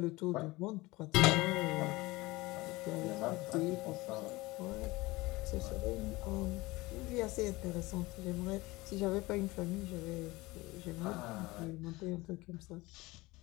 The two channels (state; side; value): quieter; right; 21.1 dB